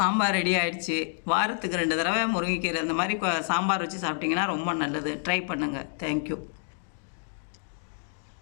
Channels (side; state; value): right; silent; digital silence